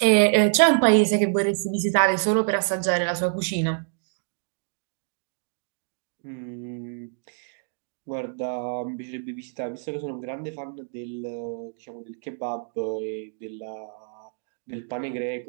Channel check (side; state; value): left; silent; digital silence